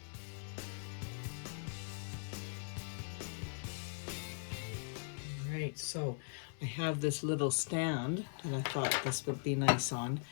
All right, so I have this little stand that I thought this would be nice on.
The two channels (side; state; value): right; silent; 51 dB below the other